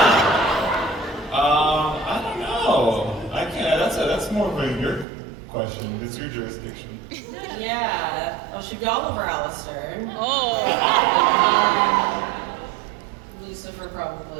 I don't know. I can't. That's more of your question. It's your jurisdiction. Yeah. Well, should be Oliver Alistair. Oh. Lucifer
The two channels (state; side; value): drops out; left; at 5.1 s